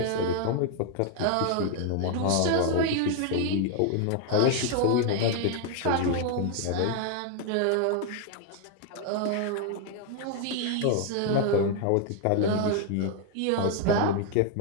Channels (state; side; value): different; both; correlation 0.00